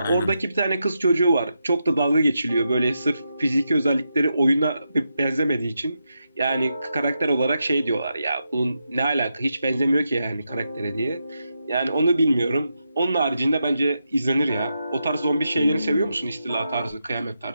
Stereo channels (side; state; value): both; inverted; correlation -0.85